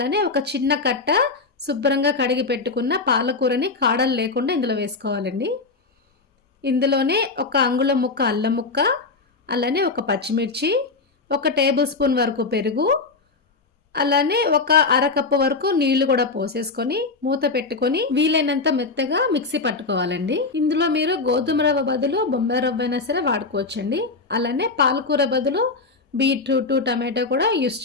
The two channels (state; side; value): quieter; right; 4.0 dB